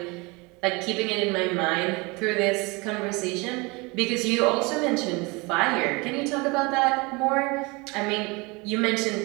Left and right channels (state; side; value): quieter; left; 26.5 dB